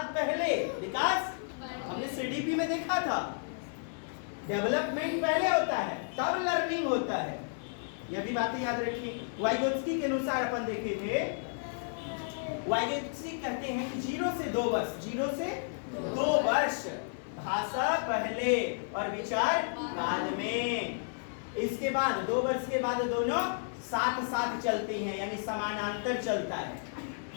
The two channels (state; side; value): silent; right; digital silence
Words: पहले, विकास हमने सीडीपी में देखा था, डेवलपमेंट पहले होता है तब लर्निंग होता है। यह भी बातें याद रखिए। वाइगोत्स्की के अनुसार अपन देखे थे, वाइगोत्स्की कहते हैं कि 0 से 2 वर्ष, 0 से 2 वर्ष भाषा पहले और विचार बाद में। इसके बाद 2 वर्ष के बाद दोनों साथ साथ चलती हैं, यानी समानांतर चलता है।